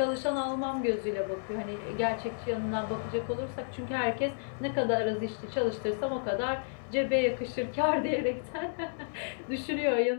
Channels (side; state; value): right; silent; 57 dB below the other